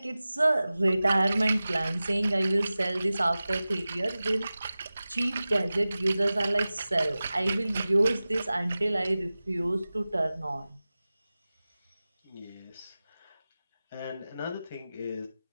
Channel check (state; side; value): inverted; both; correlation -0.97